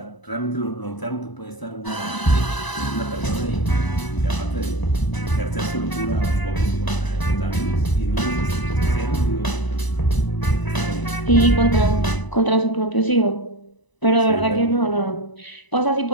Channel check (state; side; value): late; right; 1.0 ms